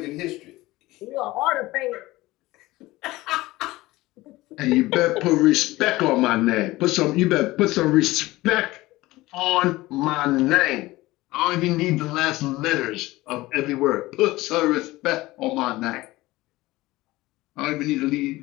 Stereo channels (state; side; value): quieter; right; 18.9 dB